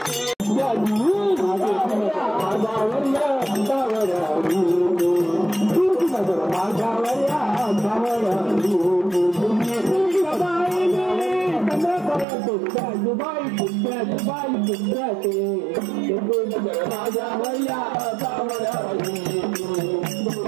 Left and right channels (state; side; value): drops out; left; at 12.2 s